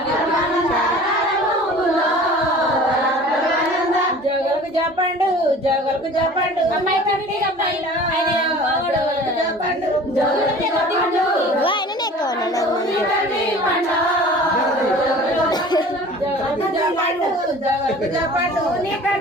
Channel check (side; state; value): both; normal; correlation 0.44